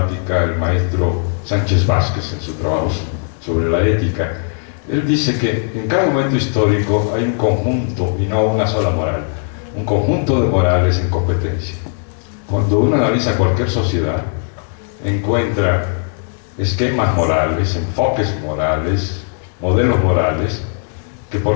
el maestro Sánchez Vázquez en su trabajo sobre la ética. Él dice que en cada momento histórico hay un conjunto y no una sola moral, un conjunto de morales en competencia. Cuando uno analiza cualquier sociedad, encuentra esquemas morales, enfoques morales, modelos morales, que,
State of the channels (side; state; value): right; silent; 58 dB below the other